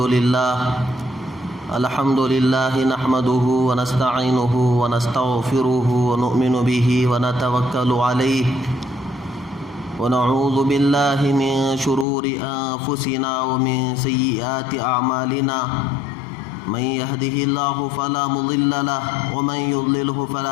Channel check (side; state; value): right; drops out; at 12.1 s